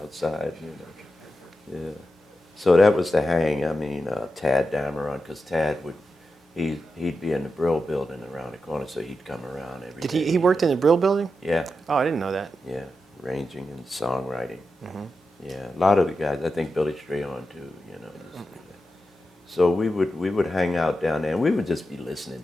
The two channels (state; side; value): normal; both; correlation 0.89